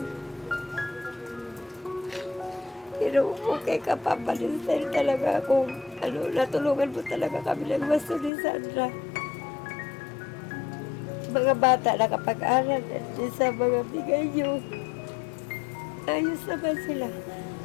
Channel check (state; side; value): drops out; right; at 8.3 s